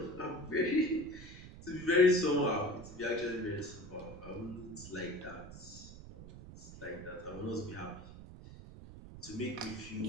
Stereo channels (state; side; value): noise; right; rumble, 14 dB below the sound